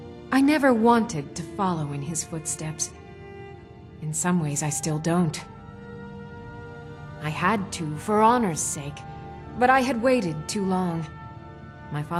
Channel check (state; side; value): identical; both; correlation 1.00